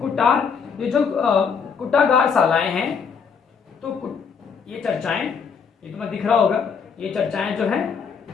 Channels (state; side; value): quieter; right; 6.2 dB